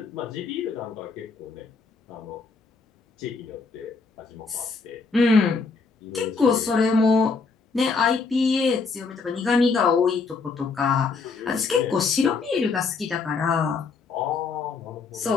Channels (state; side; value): quieter; right; 4.5 dB